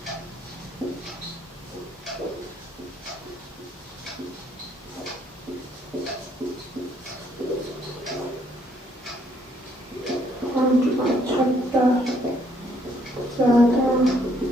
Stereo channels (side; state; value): both; normal; correlation 0.67